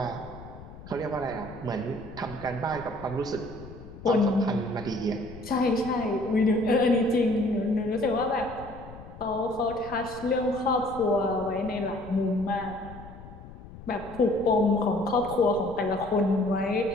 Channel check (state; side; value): noise; left; rumble, 16 dB below the sound